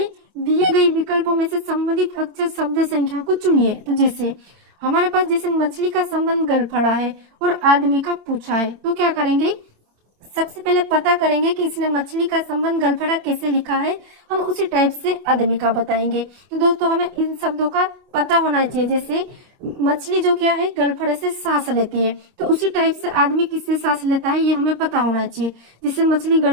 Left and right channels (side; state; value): left; late; 25 ms